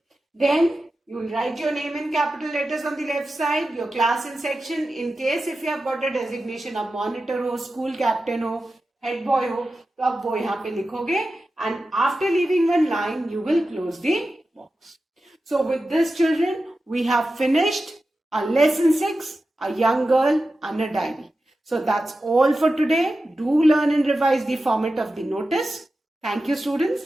Then you will write your name in capital letters on the left side, your class and section. In case if you have got a designation of monitor हो, school captain हो, head boy हो, तो आप वो यहाँ पे लिखोगे. And after leaving one line, you will close the box. So with this, children, we have finished our lesson 6, a young girl and a diary. So that's all for today. Do learn and revise the format of the notice. Thank you, students.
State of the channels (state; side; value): normal; both; correlation 0.93